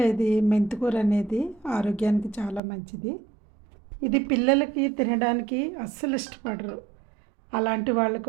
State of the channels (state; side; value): drops out; left; at 2.6 s